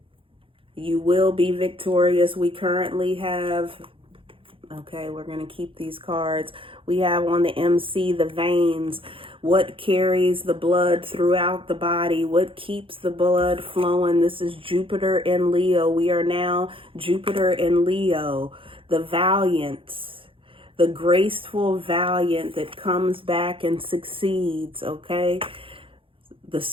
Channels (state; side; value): late; left; 0.26 ms